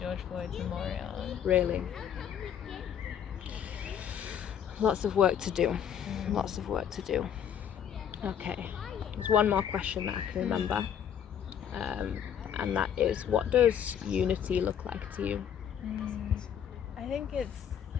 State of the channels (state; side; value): quieter; right; 8.7 dB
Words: Floyd's memorial. Really? Lots of work to do. Lots of work to do. Okay, there's one more question that I can remember, and that is, what does unity look like to you? I think it's